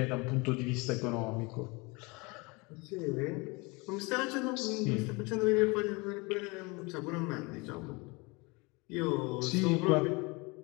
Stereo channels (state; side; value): quieter; right; 26.9 dB